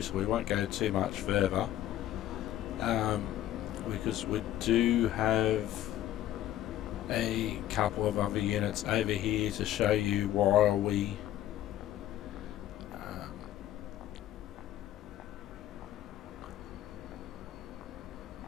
so we won't go too much further. Because we do have a couple of other units over here to show you while we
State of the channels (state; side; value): quieter; right; 12.8 dB